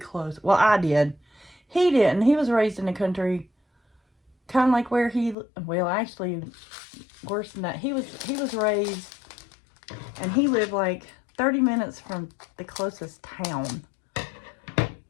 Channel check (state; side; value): drops out; right; at 5.4 s